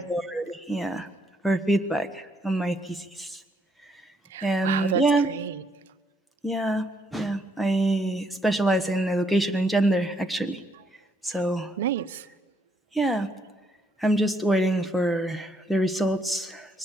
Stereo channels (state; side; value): normal; both; correlation 0.72